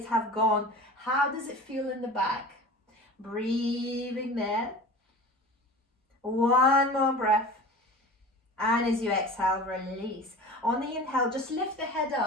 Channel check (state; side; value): normal; both; correlation 0.36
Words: have gone. How does it feel in the back? Breathing there. One more breath. And as you exhale, release. On the inhale, just lift the head